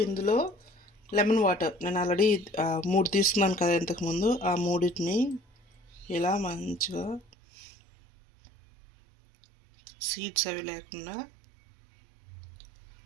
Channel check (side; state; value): left; drops out; at 7.2 s